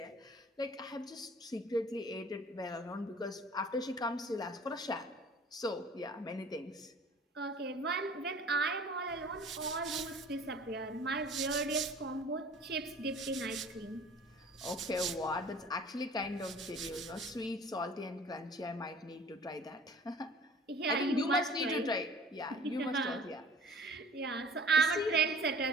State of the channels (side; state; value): both; normal; correlation 0.47